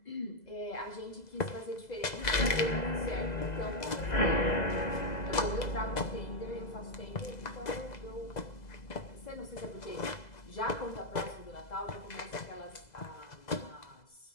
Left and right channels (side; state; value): right; late; 2.0 ms